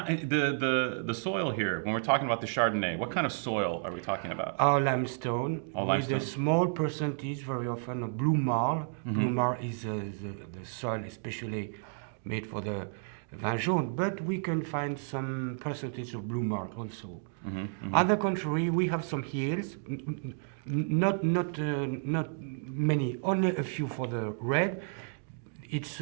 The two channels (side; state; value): left; silent; digital silence